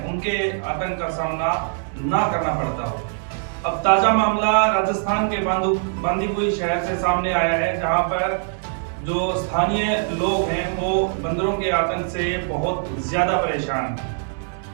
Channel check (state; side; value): silent; left; 64 dB below the other